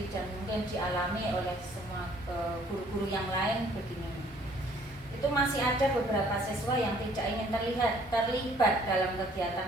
dan mungkin dialami oleh semua guru-guru yang lain begini. Itu masih ada beberapa siswa yang tidak ingin terlibat dalam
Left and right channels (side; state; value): both; normal; correlation 0.60